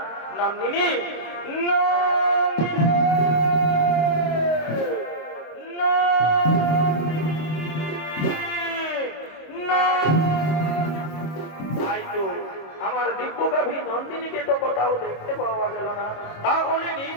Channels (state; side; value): late; right; 26 ms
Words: নন্দিনী আমার দিব্য গাভী নন্দিনীকে তো কোথাও দেখতে পাওয়া গেল না। তাহলে